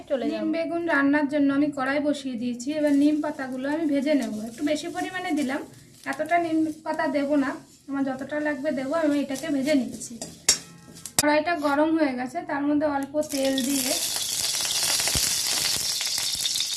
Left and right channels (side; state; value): both; identical; correlation 1.00